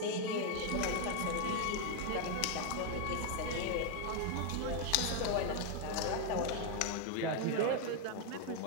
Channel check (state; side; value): different; both; correlation 0.01